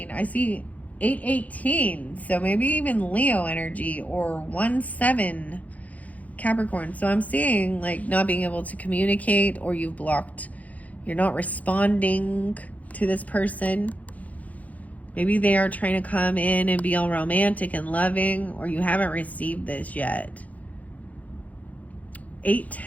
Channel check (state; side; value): late; right; 0.073 ms